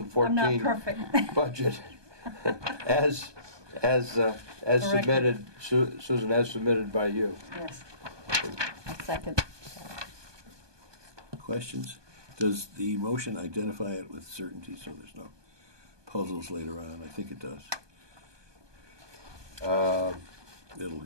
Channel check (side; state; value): left; late; 1.2 ms